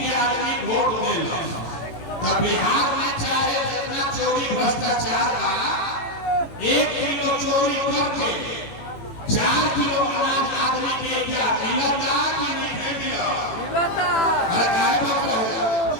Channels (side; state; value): right; late; 18 ms